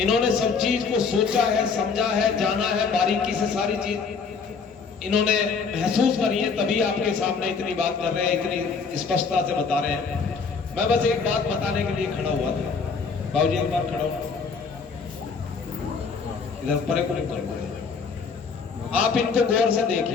सब चीज को सोचा है, समझा है, जाना है, बारीकी से सारी चीज इन्होंने महसूस करी है, तभी आपके सामने इतनी बात कर रहे हैं, इतनी स्पष्टता से बता रहे हैं। मैं बस एक बात बताने के लिए खड़ा हुआ था। बाबूजी एक बार खड़ा हो, इधर परे को निकल। आप इनको गौर से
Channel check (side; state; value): right; quieter; 5.3 dB